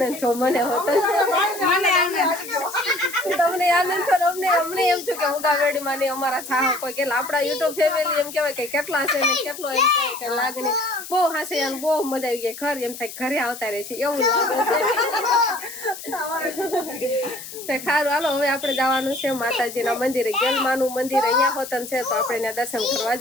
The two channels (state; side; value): noise; left; hiss, 12 dB below the sound